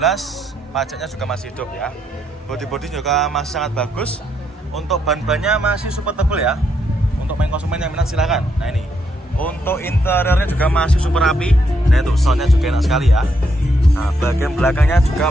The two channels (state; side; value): normal; both; correlation 0.77